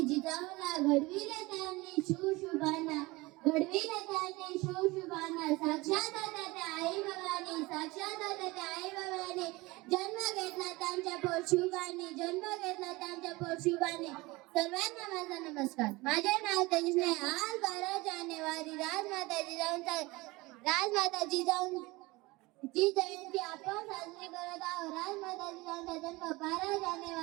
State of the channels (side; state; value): left; quieter; 22.2 dB